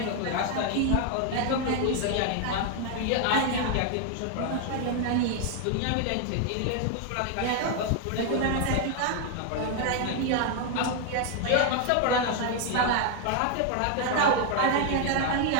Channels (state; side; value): different; both; correlation 0.00